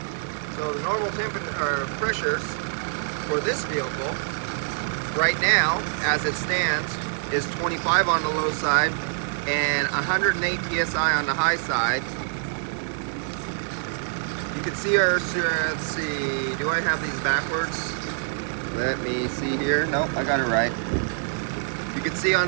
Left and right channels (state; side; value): silent; left; digital silence